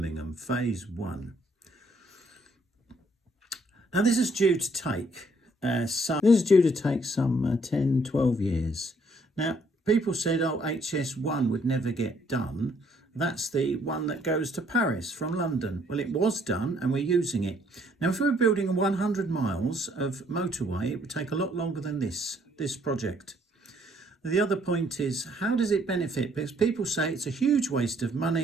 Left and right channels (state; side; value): normal; both; correlation 0.66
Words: phase 1. Now this is due to take some 10, 12 years. Now people said, oh, HS1 would never get done. That's the one that goes to Paris from London. Well, it was done and we're using it. Now, if we were building 100 miles of motorway, it would take a lot longer than this project. The other point is, how does it benefit? Because people say it's a huge waste of